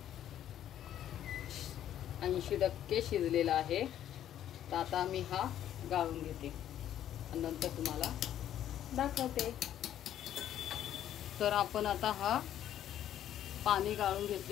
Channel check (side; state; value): right; quieter; 11.1 dB